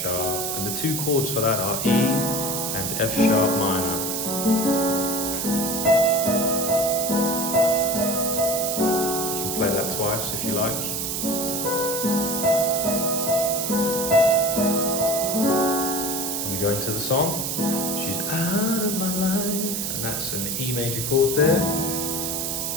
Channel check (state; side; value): noise; right; hiss, 2 dB below the sound